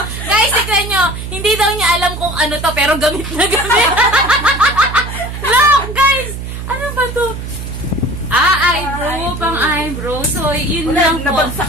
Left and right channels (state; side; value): noise; right; hum, 8 dB below the sound